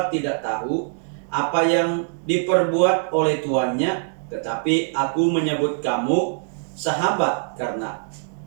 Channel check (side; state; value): left; silent; digital silence